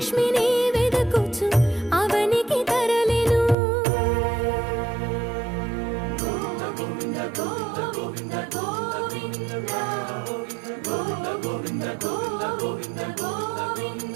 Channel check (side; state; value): left; drops out; at 3.6 s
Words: వెదకుచు అవనికి తరలెను.